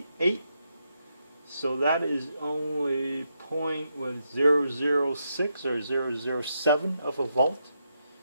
So that is only 0.006 or 0.007 of a volt.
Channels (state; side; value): inverted; both; correlation -0.81